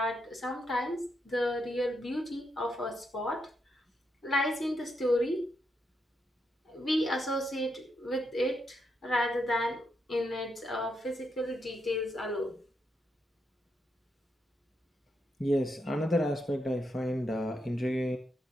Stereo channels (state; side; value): normal; both; correlation 0.81